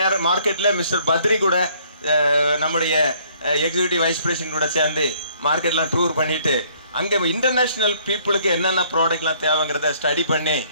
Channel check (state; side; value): inverted; both; correlation -0.62